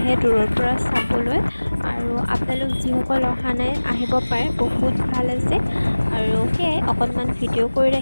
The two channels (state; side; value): inverted; both; correlation -1.00